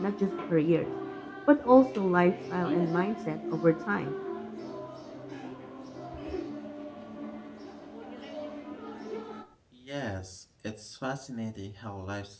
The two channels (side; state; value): both; identical; correlation 1.00